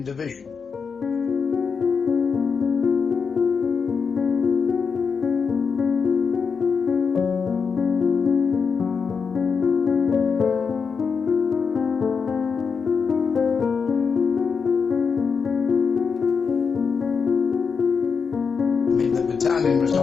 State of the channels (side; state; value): right; quieter; 5.7 dB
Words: Division. The battalion was